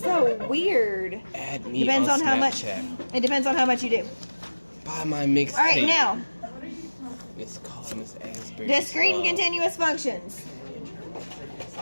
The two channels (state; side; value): inverted; both; correlation -1.00